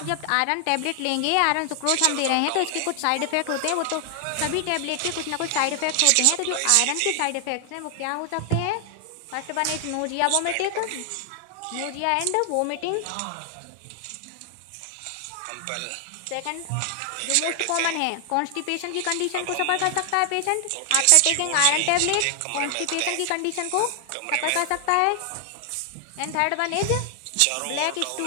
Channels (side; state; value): both; different; correlation 0.00